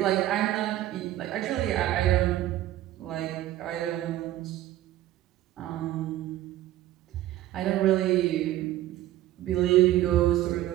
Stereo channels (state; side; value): quieter; left; 14.3 dB